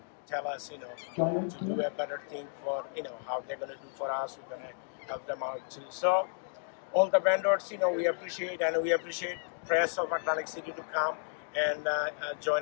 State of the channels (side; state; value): right; silent; digital silence